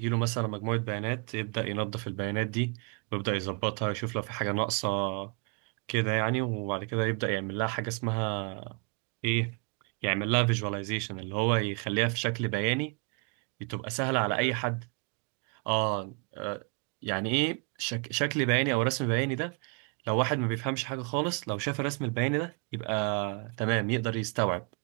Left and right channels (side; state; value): left; quieter; 35.6 dB